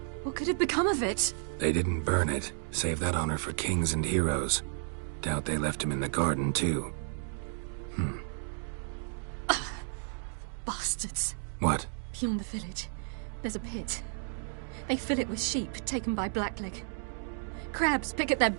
What could have become of it? They didn't burn it. Save that honor for kings and heroes. Doubt they left him in the garden, too. Bastards. What? Beyond the village, there's a pit. They fill it with sheep taken by Blackleg. Crabs pick at their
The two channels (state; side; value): silent; left; digital silence